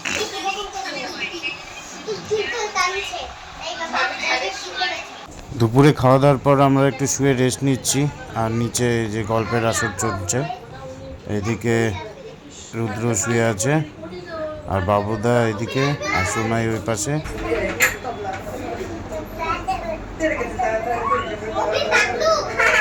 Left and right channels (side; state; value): both; identical; correlation 1.00